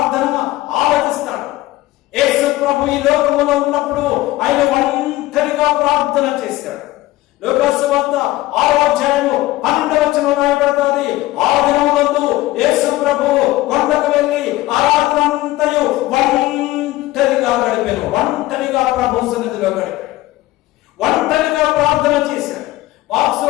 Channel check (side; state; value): right; quieter; 17.3 dB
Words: ఆలకిస్తాడు. యేసు ప్రభు ఈ లోకములో ఉన్నప్పుడు ఆయన ఒంటరిగా ప్రార్థన చేశాడు. లూకా సువార్త 6వ అధ్యాయము 12వ వచనం రాయబడుతుంది. ఆ దినములందు యేసు ప్రభు కొండకు వెళ్ళి ఆ రాత్రంతయు ఒంటరిగా గడిపాను. ఒంటరిగా ప్రభు సన్నిధిలో గడిపాడు. ఒంటరిగా ప్రార్థన చేశాడు.